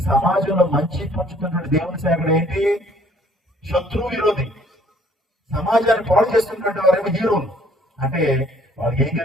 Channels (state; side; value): normal; both; correlation 0.60